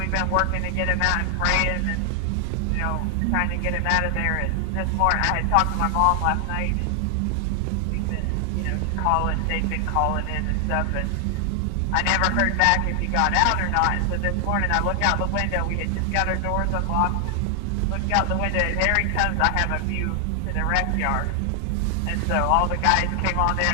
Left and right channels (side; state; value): both; different; correlation 0.00